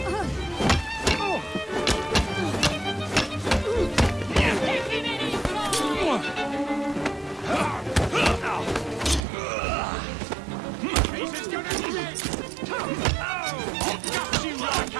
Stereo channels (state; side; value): drops out; left; at 9.2 s